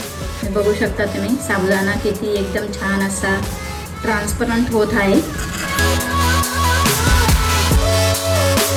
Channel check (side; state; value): both; identical; correlation 1.00